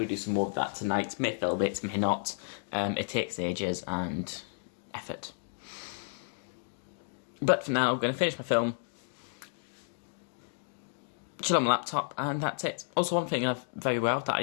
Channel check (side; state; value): right; silent; digital silence